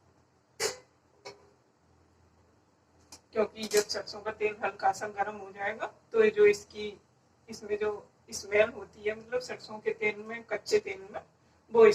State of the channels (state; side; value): identical; both; correlation 1.00